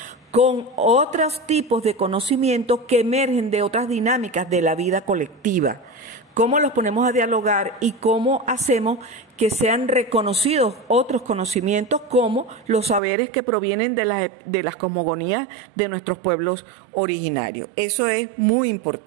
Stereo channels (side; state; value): left; drops out; at 13.0 s